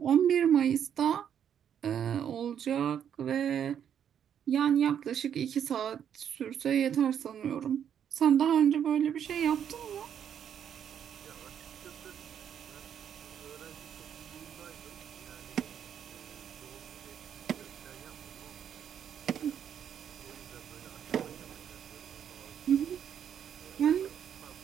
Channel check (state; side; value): quieter; left; 8.8 dB